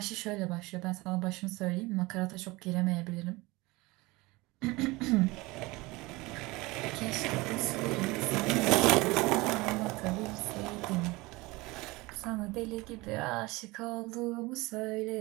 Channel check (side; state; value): left; quieter; 22.5 dB